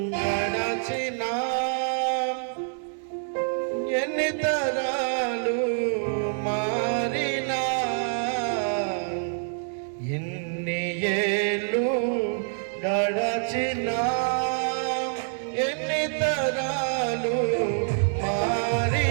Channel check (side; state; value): left; silent; 61 dB below the other